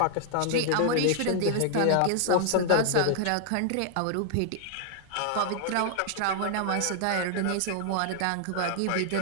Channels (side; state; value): both; different; correlation 0.00